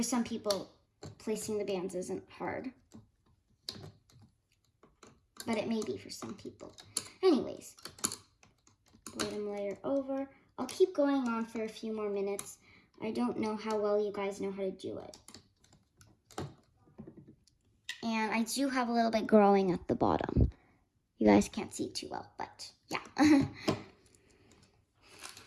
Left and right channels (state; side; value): identical; both; correlation 1.00